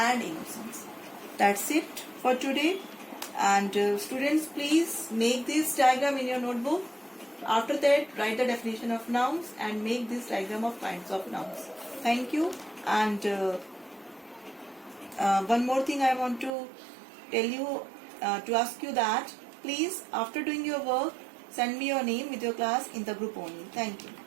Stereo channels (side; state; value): left; drops out; at 16.5 s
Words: innocence. That's it for today. And students, please make this diagram in your notebook. After that, write the definition of nouns and make this diagram of kinds of nouns. Thank you. And one more thing I want to tell you, to ask you that please, after doing your work, send me your name with your class in the group only. Thank you.